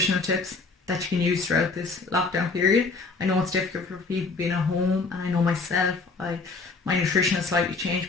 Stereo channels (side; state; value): right; quieter; 4.1 dB